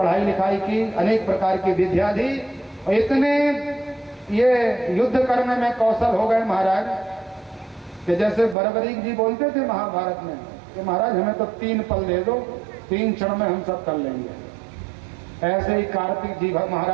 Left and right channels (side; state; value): left; drops out; at 8.6 s